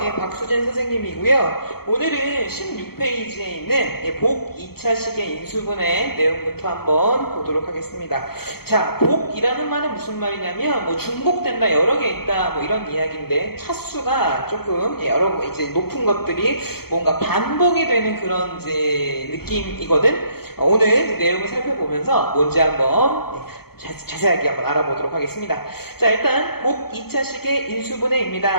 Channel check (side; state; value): right; late; 0.95 ms